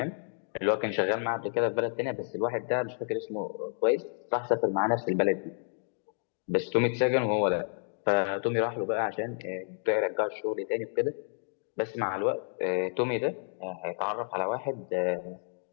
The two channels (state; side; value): silent; right; digital silence